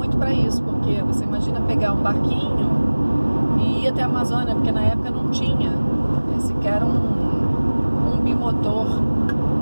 para isso, porque você imagina pegar um barquinho e ir até a Amazônia, porque na época não tinha sequer um bimotor.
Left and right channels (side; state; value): both; inverted; correlation -1.00